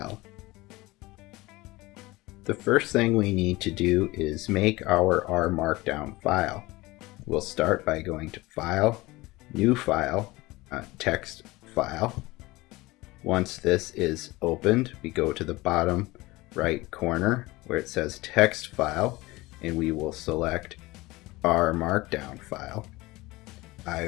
The first thing we need to do is make our R Markdown file. We'll start by going to File, New File, Text File. Once this is opened, we go to the bottom right corner where it says Text File, and we will select R Markdown file.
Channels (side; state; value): right; quieter; 20.8 dB